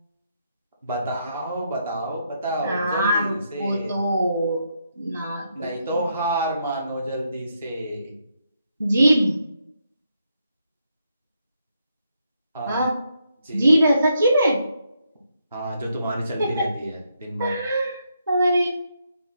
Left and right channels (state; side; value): inverted; both; correlation -0.78